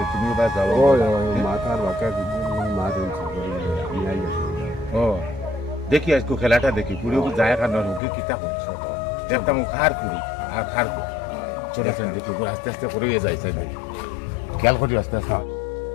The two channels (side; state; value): right; drops out; at 8.0 s